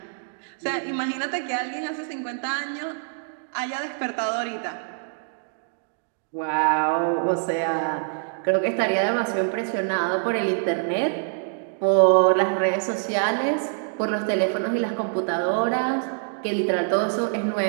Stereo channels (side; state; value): left; silent; digital silence